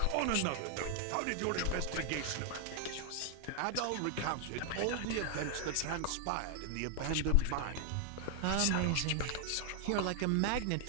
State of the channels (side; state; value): both; different; correlation 0.00